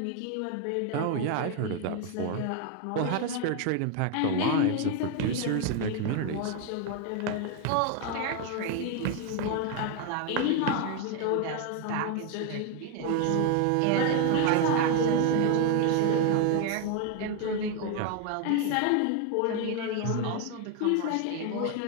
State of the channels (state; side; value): different; both; correlation 0.01